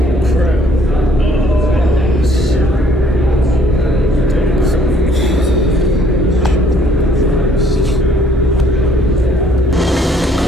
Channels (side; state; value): both; normal; correlation 0.63